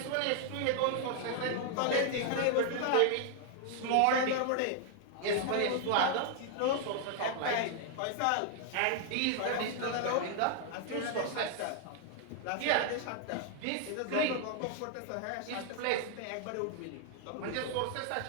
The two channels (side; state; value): both; different; correlation 0.00